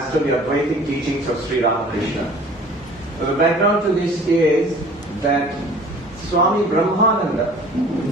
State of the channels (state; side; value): normal; both; correlation 0.48